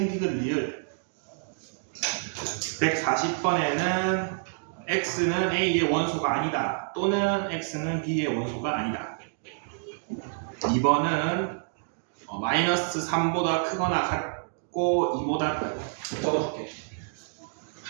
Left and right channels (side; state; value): left; silent; digital silence